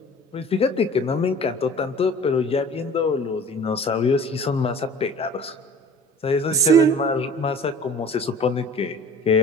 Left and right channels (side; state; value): both; normal; correlation 0.44